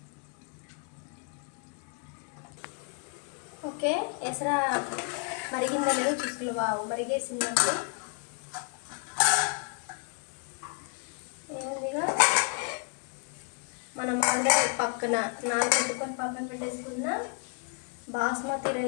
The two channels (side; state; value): right; quieter; 38.3 dB